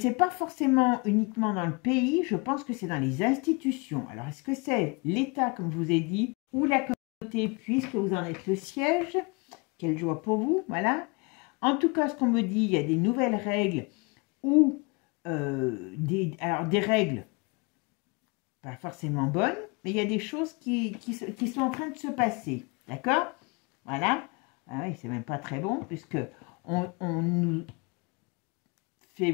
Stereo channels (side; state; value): right; quieter; 29.6 dB